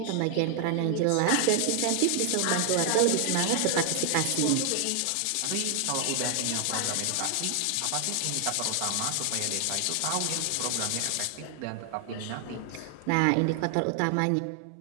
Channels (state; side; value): different; both; correlation 0.00